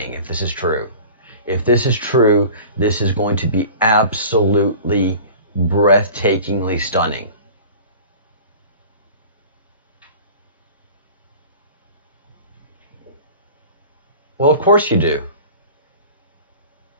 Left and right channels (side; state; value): both; inverted; correlation -0.40